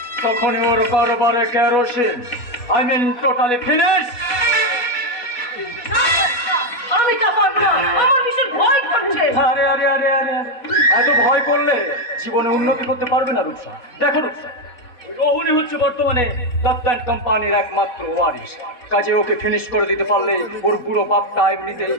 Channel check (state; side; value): late; right; 4.1 ms